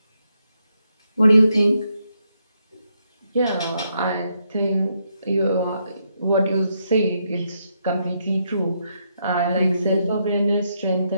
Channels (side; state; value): both; inverted; correlation -0.79